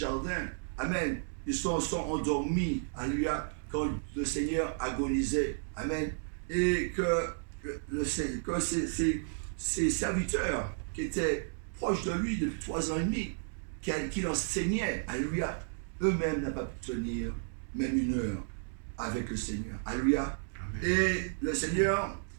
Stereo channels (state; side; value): silent; left; digital silence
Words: amen, ils sont endormis, alléluia, quand le Seigneur agonisait. Amen. Et que ses serviteurs qui étaient proches de lui depuis 3 ans et demi, qui l'enseignaient, alléluia, eux-mêmes n'ont pas pu tenir même 1 heure avec le Seigneur. Alléluia. Et le Seigneur